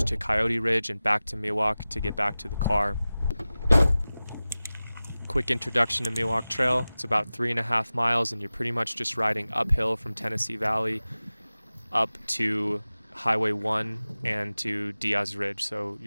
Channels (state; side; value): inverted; both; correlation -0.96